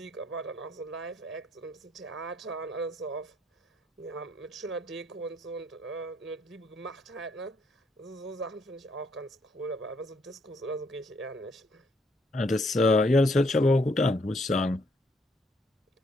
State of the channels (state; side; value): normal; both; correlation 0.71